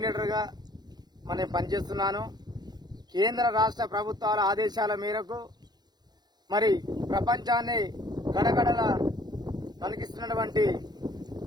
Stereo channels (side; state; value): left; late; 0.20 ms